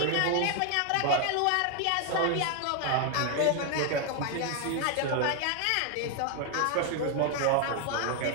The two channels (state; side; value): different; both; correlation 0.01